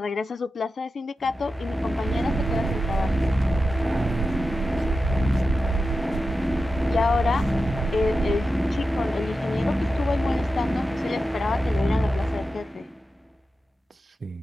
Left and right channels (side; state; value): both; normal; correlation 0.91